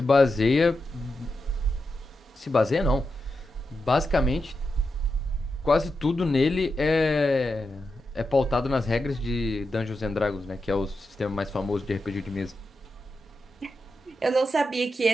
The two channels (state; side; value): normal; both; correlation 0.88